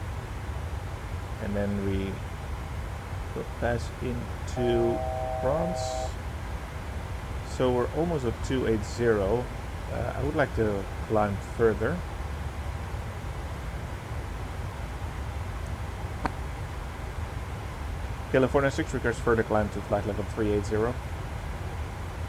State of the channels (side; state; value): both; identical; correlation 1.00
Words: and then we will pass into France. So we're almost at 280. I would like to climb further. California 6 requires further climb to flight level 380.